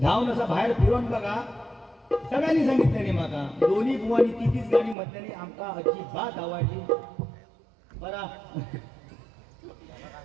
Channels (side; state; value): left; drops out; at 5.0 s